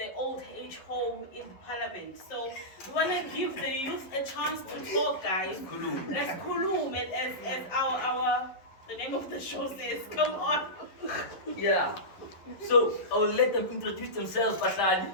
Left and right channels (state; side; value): late; right; 11 ms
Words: old age home in the parliament. So we want to give the youth a chance to talk, guys. Let's kulum, as our the name of the show says. Come on. Yeah. So I'll let them introduce themselves, Baslali.